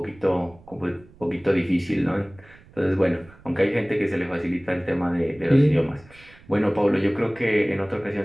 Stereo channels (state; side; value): noise; right; rumble, 24 dB below the sound